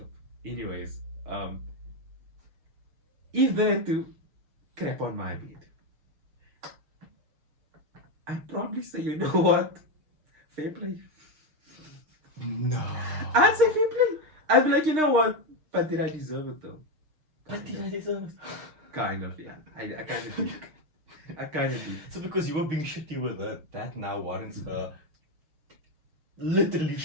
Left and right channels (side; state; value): left; late; 6.4 ms